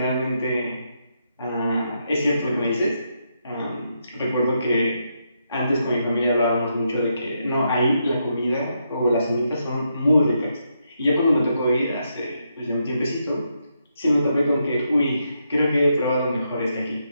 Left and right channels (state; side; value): inverted; both; correlation -0.81